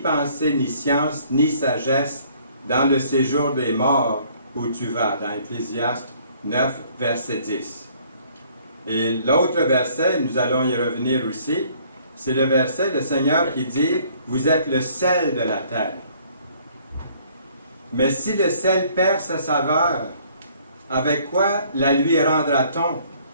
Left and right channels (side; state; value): both; inverted; correlation -0.60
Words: ni science, ni sagesse dans le séjour des morts où tu vas. » Dans Ecclésiaste 9, verset 10. Et l'autre verset, nous allons y revenir aussi, c'est le verset du Seigneur qui dit « Vous êtes le sel de la terre. » Mais si le sel perd sa saveur, avec quoi la lui rendra-t-on?